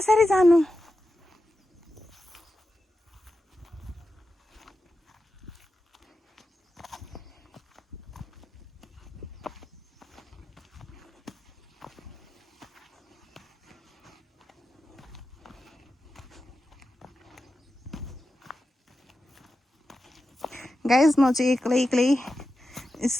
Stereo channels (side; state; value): both; normal; correlation 0.91